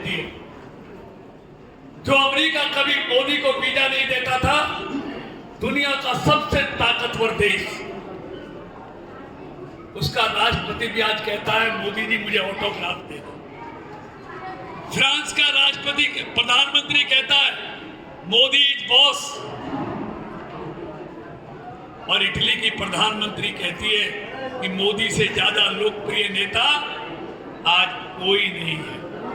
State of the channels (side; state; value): both; identical; correlation 1.00